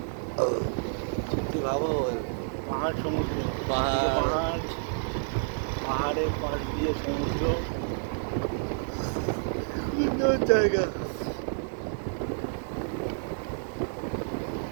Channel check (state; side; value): silent; left; digital silence